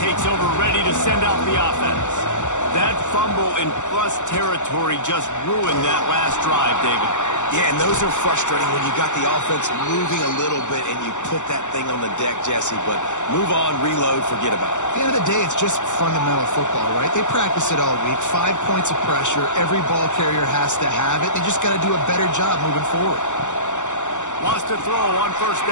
over, ready to send out the offense. That fumble in plus territory just ruined that last drive, David. Yeah, and those are frustrating when you got the offense moving a little bit and you put that thing on the deck, Jesse. But move on, reload, forget about it. At the end of the day, it's just fundamental football, right? They practice it all week. 5 points of pressure. Every ball carrier has to have it. They just got to do a better job moving forward. Wants to throw on 1st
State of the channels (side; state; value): right; late; 0.84 ms